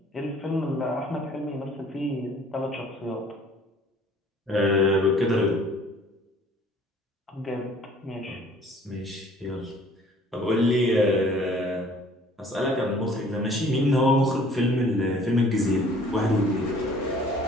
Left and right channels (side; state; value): both; normal; correlation 0.54